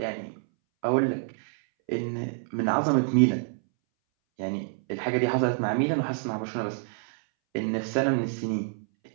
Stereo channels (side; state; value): left; silent; 60 dB below the other